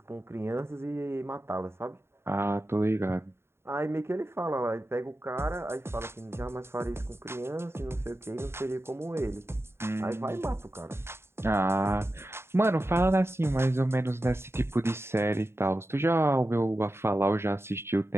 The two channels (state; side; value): late; left; 0.12 ms